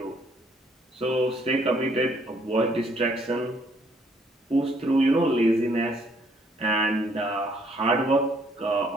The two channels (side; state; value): both; normal; correlation 0.65